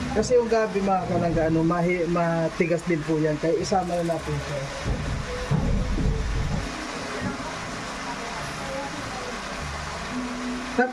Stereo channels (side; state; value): both; identical; correlation 1.00